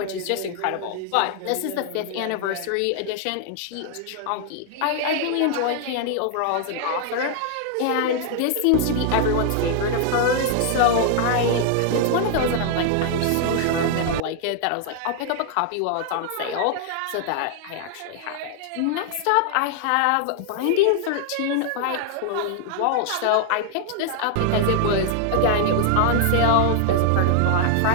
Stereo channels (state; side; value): different; both; correlation 0.00